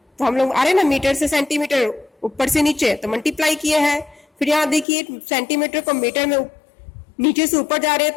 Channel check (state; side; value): drops out; right; at 4.9 s